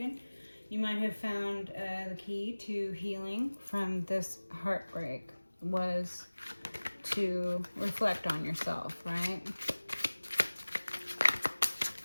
You might have found the key to healing from this heartbreak was to reflect on yourself, right?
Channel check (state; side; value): inverted; both; correlation -1.00